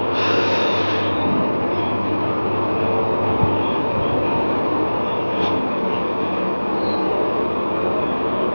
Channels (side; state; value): both; inverted; correlation -1.00